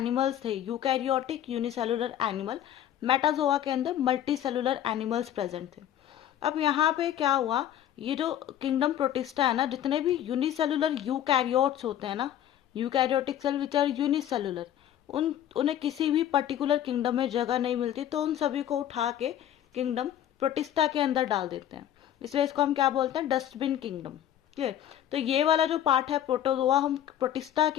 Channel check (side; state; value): right; quieter; 11.2 dB